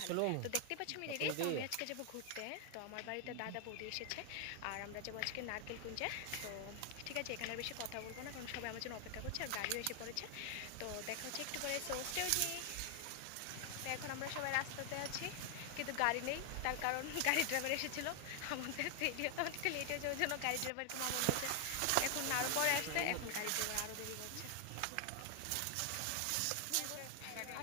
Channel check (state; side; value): different; both; correlation 0.00